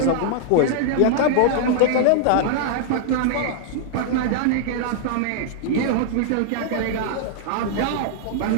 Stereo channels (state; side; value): different; both; correlation -0.01